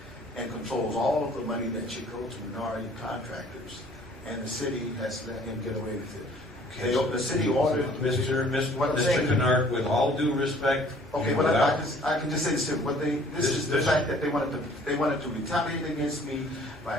and controls all of the money that should go to minority contractors, and the city has let him get away with it. The city ordered... Mr. Kennard, with all due respect... Okay, but I can just say this, this is the fact that they wanted to retaliate against me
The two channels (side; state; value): both; normal; correlation 0.55